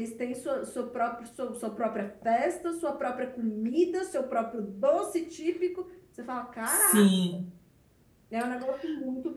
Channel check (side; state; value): both; identical; correlation 1.00